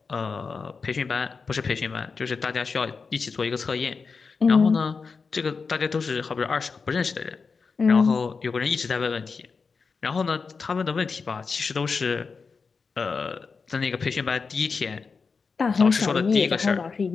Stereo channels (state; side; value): quieter; right; 4.9 dB